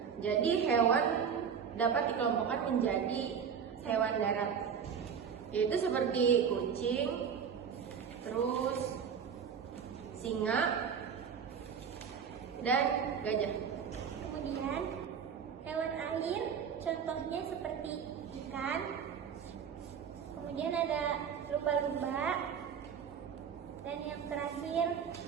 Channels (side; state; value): left; quieter; 7.2 dB